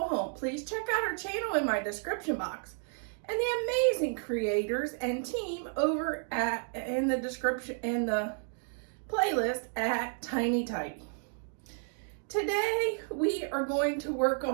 Home. Please check out our channel in my description box, and the amazing creators and team over in the description in the playlist at Tiny Tidy. Today we are going to work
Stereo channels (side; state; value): left; silent; 56 dB below the other